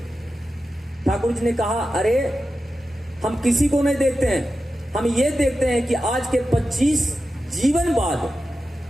ठाकुर जी ने कहा, अरे हम किसी को नहीं देखते हैं, हम ये देखते हैं कि आज के 25 जीवन बाद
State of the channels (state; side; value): normal; both; correlation 0.91